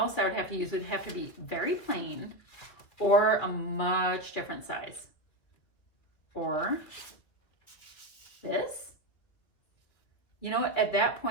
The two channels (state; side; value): late; right; 2.5 ms